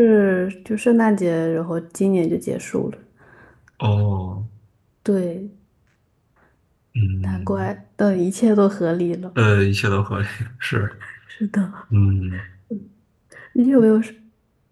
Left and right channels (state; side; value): identical; both; correlation 1.00